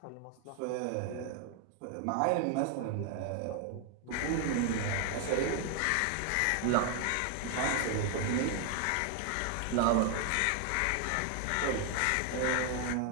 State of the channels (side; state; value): both; different; correlation 0.00